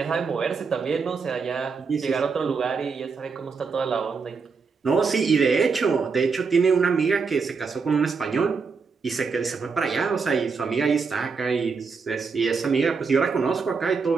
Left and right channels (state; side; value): quieter; left; 5.1 dB